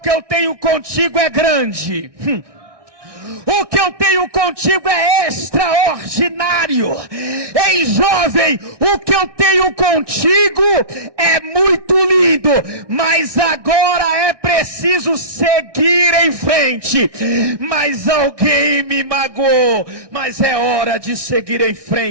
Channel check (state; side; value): late; left; 1.6 ms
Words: eu tenho contigo é grande. O que eu tenho contigo é extraordinário. Ei, jovem, o que eu tenho contigo é muito lindo, mas agora é preciso seguir em frente. Mas alguém me magoou, mas é hora de seguir em